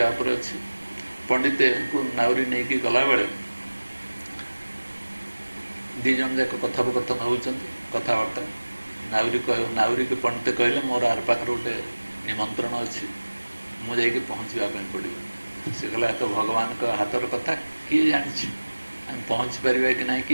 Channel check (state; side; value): inverted; both; correlation -1.00